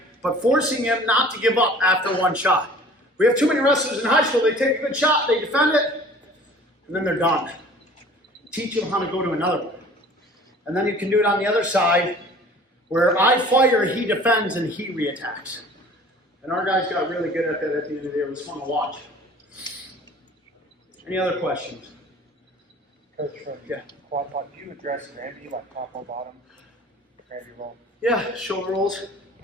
but forcing him not to give up after one shot. We have too many wrestlers in high school, they take a good shot, they defend it, and then they're done. Teach them how to go to another one. And then you can do it on the other side, where I fire, he defends, and he reattacks. And our guys got really good at that at the end of the day. It was fun to watch. Any other questions? Coach, Yeah. quad pod, do you address Granby like top or bottom? Granby roll. Yeah, shoulder rolls.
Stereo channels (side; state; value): both; normal; correlation 0.47